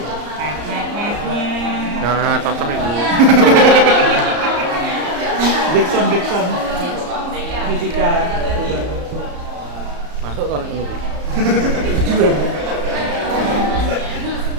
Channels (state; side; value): late; left; 34 ms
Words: Nah, cocok itu. Backsound fisika. Masuk kalau ini.